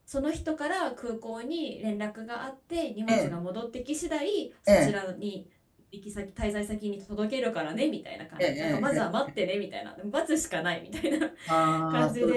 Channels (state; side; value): identical; both; correlation 1.00